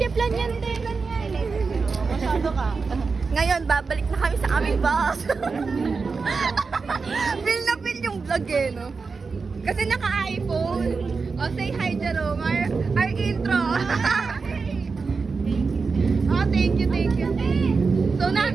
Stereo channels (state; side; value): quieter; left; 4.7 dB